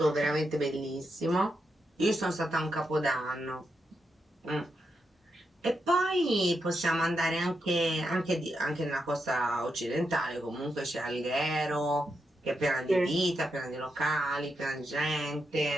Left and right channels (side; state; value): both; normal; correlation 0.84